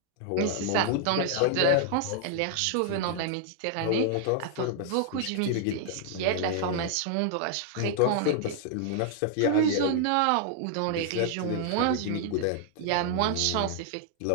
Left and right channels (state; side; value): different; both; correlation -0.01